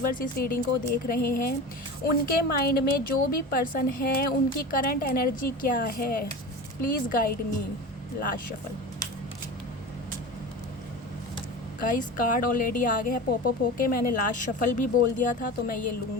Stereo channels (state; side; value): normal; both; correlation 0.31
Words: इस रीडिंग को देख रहे हैं, उनके माइंड में जो भी पर्सन है, उनकी करंट एनर्जी क्या है, please guide me. Last shuffle. Guys, card already आ गया है पॉपअप होके। मैंने लास्ट शफल भी बोल दिया था, तो मैं ये